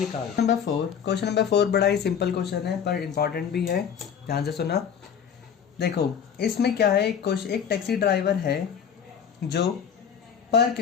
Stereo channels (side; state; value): right; quieter; 7.7 dB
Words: क्वेश्चन नंबर 4 बड़ा ही सिंपल क्वेश्चन है पर इंपॉर्टेंट भी है, ध्यान से सुना। देखो इसमें क्या है, एक टैक्सी ड्राइवर है जो पर